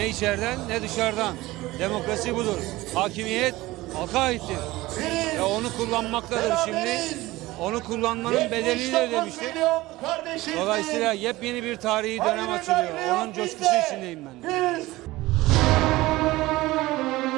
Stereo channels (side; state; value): left; quieter; 18.8 dB